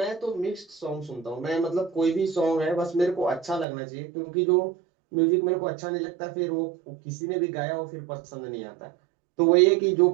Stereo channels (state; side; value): drops out; left; at 3.7 s